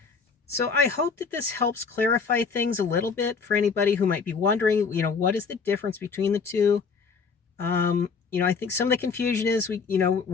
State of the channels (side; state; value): right; quieter; 5.3 dB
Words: So I hope that this helps clarify things a little bit for anybody who might be wondering, what is the difference between the two? I think some of the confusion is